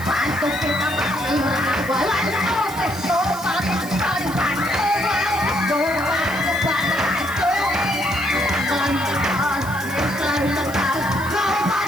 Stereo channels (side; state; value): right; noise; hiss, 15 dB below the sound